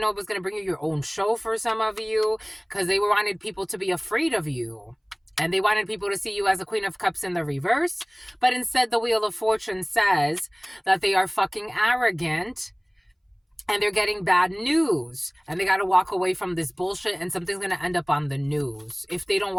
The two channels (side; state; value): both; identical; correlation 1.00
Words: know it was going to bring you your own show for some of you, because they wanted people to be afraid of you. And they wanted people to see you as a Queen of Cups in the reverse. But instead, the Wheel of Fortune says that they are fucking arrogant and they're getting bad news, and they got to walk away from this bullshit, and something's going to end up on the news. If they don't